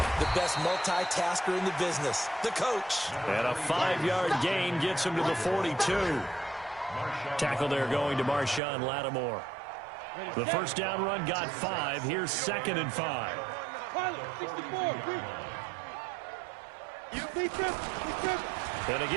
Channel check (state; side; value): drops out; left; at 8.6 s